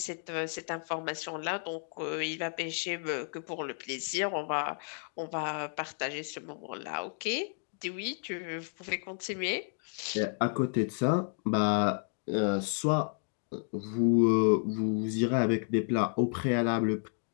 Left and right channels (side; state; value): right; silent; 55 dB below the other